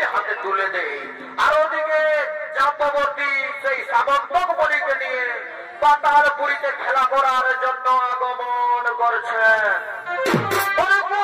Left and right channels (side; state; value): both; identical; correlation 1.00